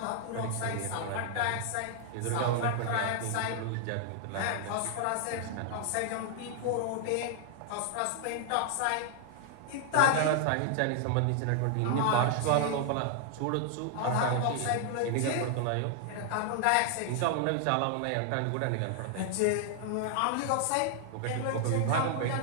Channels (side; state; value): both; different; correlation 0.00